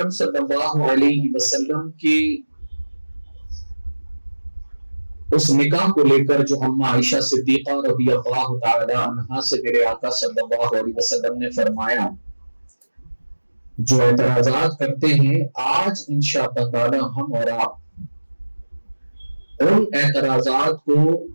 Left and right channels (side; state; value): both; inverted; correlation -1.00